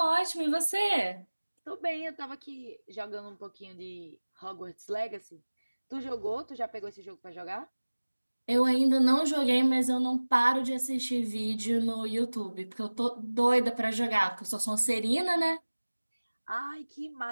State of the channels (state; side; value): inverted; both; correlation -1.00